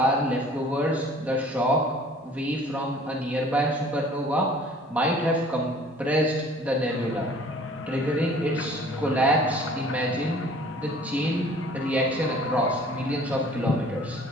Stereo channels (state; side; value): normal; both; correlation 0.51